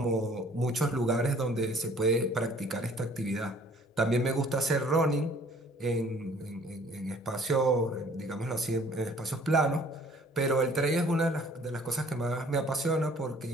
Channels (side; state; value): both; normal; correlation 0.55